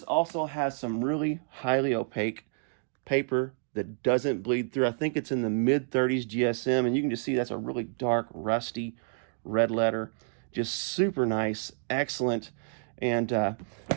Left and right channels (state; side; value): silent; left; digital silence